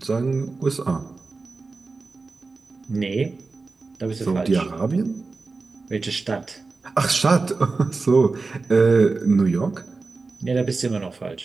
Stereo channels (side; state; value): left; quieter; 4.0 dB